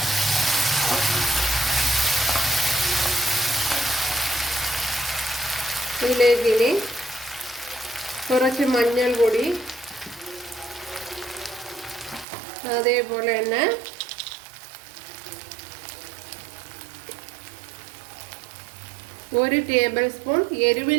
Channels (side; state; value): left; drops out; at 12.2 s